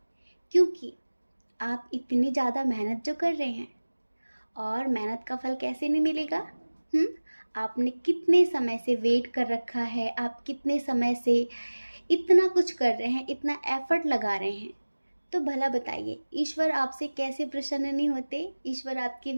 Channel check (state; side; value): inverted; both; correlation -1.00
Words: क्योंकि आप इतनी ज़्यादा मेहनत जो कर रहे हैं, और मेहनत का फल कैसे नहीं मिलेगा? आपने कितने समय से वेट कर रखा है, आप कितने समय से इतना कुछ कर रहे हैं, इतना एफर्ट लगा रहे हैं, तो भला बताइए ईश्वर आपसे कैसे प्रसन्न नहीं होते? ईश्वर आपकी